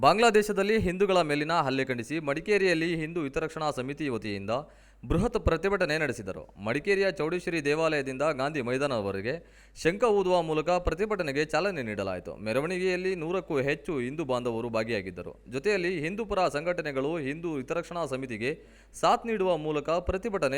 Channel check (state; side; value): identical; both; correlation 1.00